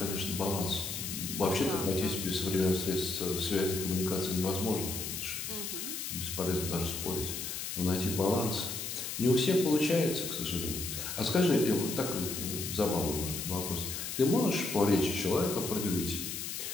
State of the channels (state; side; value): noise; left; hiss, 5 dB below the sound